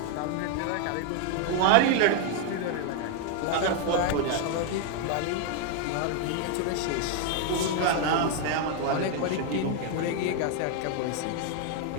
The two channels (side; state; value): both; different; correlation 0.01